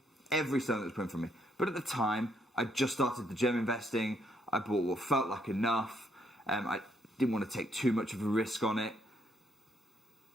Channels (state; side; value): normal; both; correlation 0.72